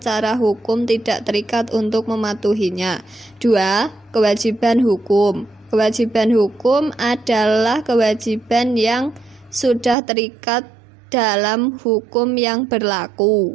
hukum tidak terikat untuk mematuhinya. 2. Kewajiban hukum. Kewajiban hukum adalah kewajiban yang sudah terikat dalam hukum yang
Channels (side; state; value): left; drops out; at 10.0 s